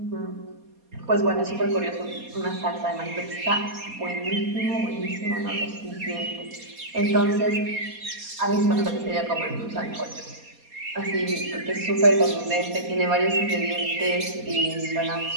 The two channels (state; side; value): late; left; 4.2 ms